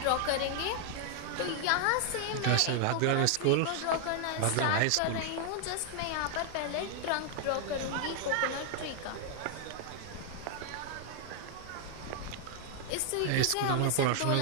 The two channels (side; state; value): both; different; correlation 0.00